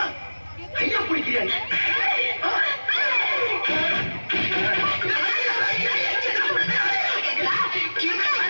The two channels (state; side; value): inverted; both; correlation -1.00